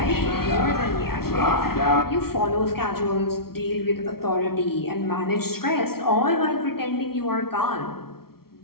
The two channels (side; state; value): right; late; 0.94 ms